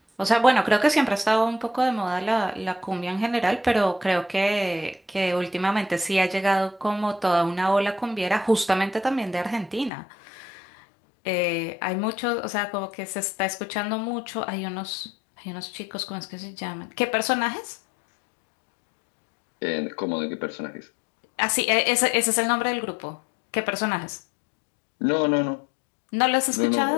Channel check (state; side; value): drops out; right; at 9.9 s